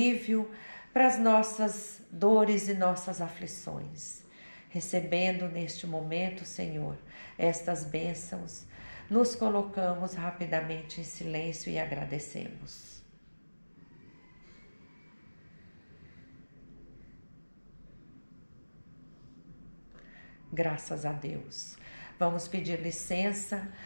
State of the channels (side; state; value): both; inverted; correlation -1.00